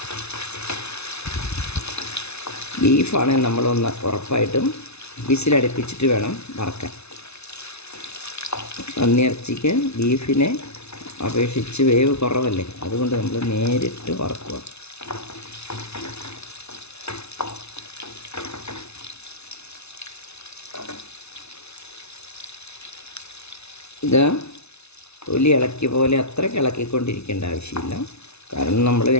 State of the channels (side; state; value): right; late; 0.81 ms